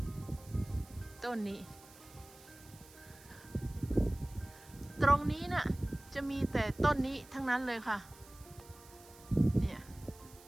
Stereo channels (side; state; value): right; noise; hiss, 22 dB below the sound